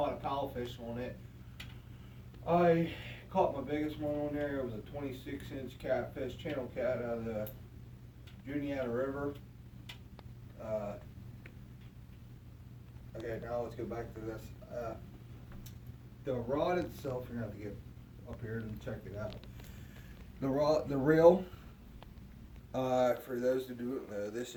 a paddlefish on it. I caught my biggest one on there. It was a 26-inch catfish, channel cat out of the Juniata River. Okay, now let's go back to this. The rod itself, you're gonna have to get up here and check it out. The reel, for those who don't know, this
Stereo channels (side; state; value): both; identical; correlation 1.00